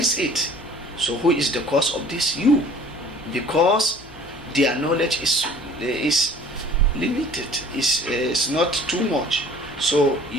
it. So who is the cause of this? You. Because their knowledge is limited, is not too much. So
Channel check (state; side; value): noise; left; hum, 26 dB below the sound